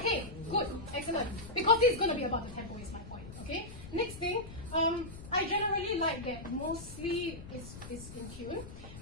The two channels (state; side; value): noise; left; rumble, 13 dB below the sound